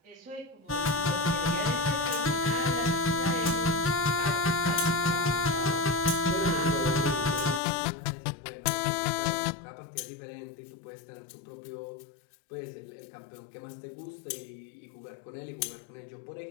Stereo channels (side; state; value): right; drops out; at 7.6 s